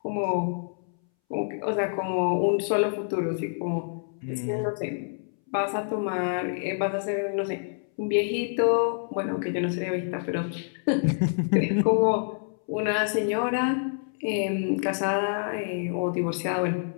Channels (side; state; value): right; silent; 60 dB below the other